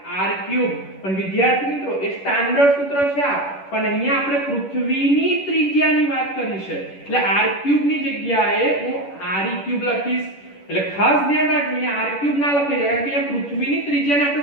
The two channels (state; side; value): late; right; 10 ms